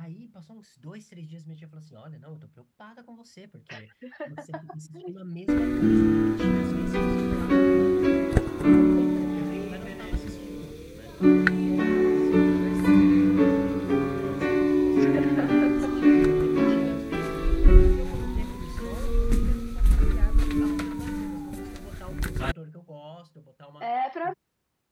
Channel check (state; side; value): identical; both; correlation 1.00